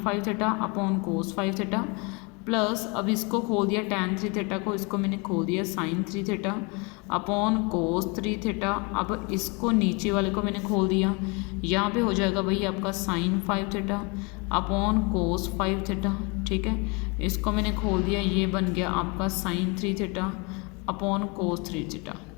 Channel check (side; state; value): right; quieter; 30.4 dB